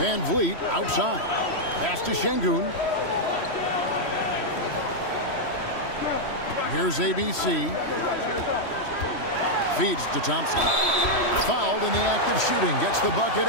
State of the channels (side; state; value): right; late; 3.1 ms